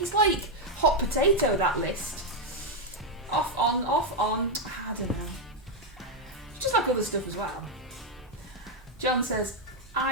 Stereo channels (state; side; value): normal; both; correlation 0.02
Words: it's like hot potato, that list. Off on. I don't know. It's just like other stuff as well. John says,